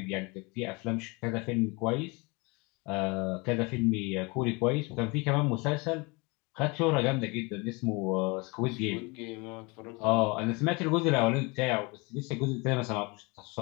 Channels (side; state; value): right; quieter; 27.7 dB